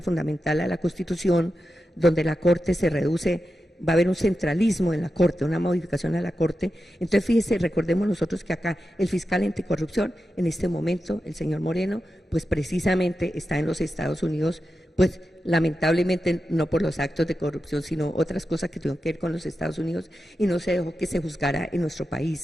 fundamental a la Constitución, donde la Corte se reduce, va a haber un centralismo en la Corte, una modificación a la Corte. Entonces, fíjese, recordemos nosotros que acá el fiscal anticorrupción, en este momento, el señor Moreno, pues precisamente está en los Estados Unidos, pues lamentablemente no por los actos de corrupción, sino otras cosas que tuvieron que ver con los Estados Unidos, y no se dejó que se juzgara en nuestro país,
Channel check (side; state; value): both; normal; correlation 0.90